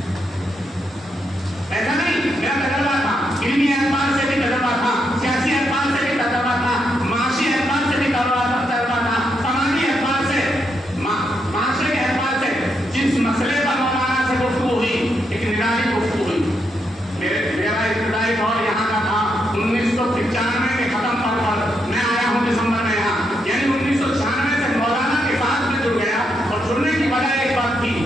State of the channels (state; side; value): normal; both; correlation 0.80